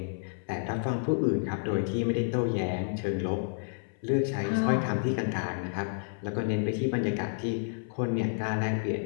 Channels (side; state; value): right; silent; 58 dB below the other